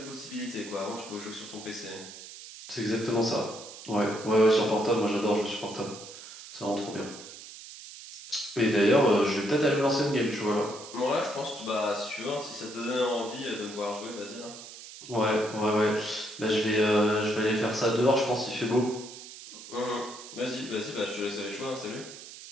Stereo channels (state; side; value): noise; right; hiss, 14 dB below the sound